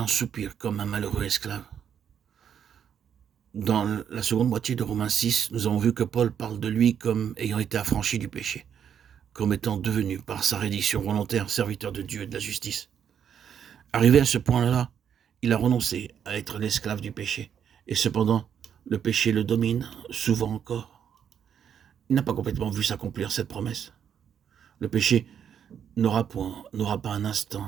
soupire comme un malheureux esclave. Dans la seconde moitié de Romains 6, nous avons vu que Paul parle de lui comme ayant été affranchi du péché, comme étant devenu, par sa reddition volontaire, serviteur de Dieu et de la justice. Arrivé à ce point-là, il a renoncé à être l'esclave du péché. Et cependant, le péché le domine, souvent encore. Il n'a pas complètement vu s'accomplir cette promesse. Le péché n'aura pas un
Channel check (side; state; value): left; quieter; 8.4 dB